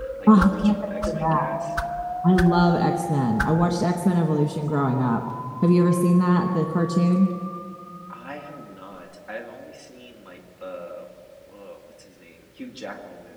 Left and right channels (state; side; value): identical; both; correlation 1.00